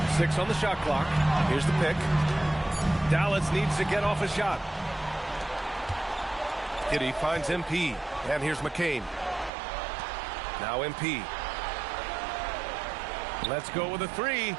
6 on the shot clock. Here's the pick. Dallas needs to get off a shot. Giddy finds MP. And here's McCain. Now MP. Let's go with a 3.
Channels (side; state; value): left; drops out; at 9.5 s